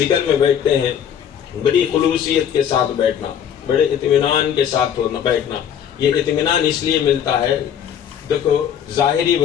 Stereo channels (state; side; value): quieter; right; 8.9 dB